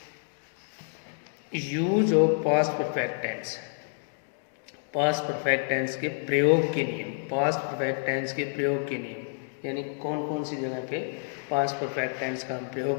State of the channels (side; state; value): right; silent; digital silence